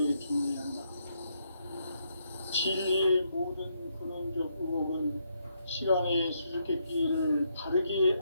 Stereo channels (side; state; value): both; inverted; correlation -0.76